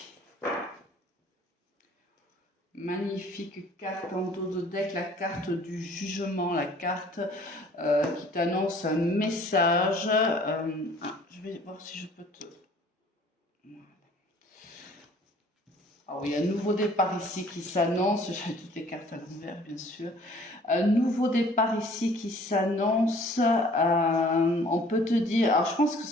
Magnifique carte en dos de deck, la carte du jugement, la carte qui t'annonce un message. Je vais voir si je peux te... Alors, il y a un nouveau départ ici qui s'annonce. J'ai toutes les cartes à l'envers, bien sûr. Un nouveau départ ici qui s'annonce. On peut te dire... Alors, je pense que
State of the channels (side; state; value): both; normal; correlation 0.54